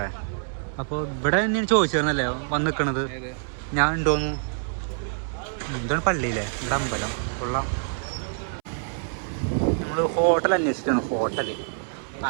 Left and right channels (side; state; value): left; silent; 61 dB below the other